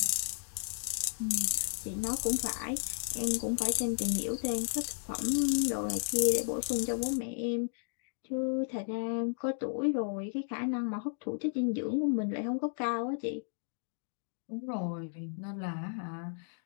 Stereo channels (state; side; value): silent; right; digital silence